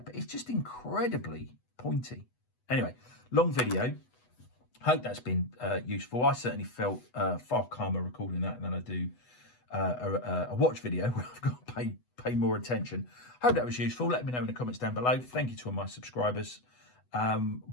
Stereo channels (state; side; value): late; right; 8.1 ms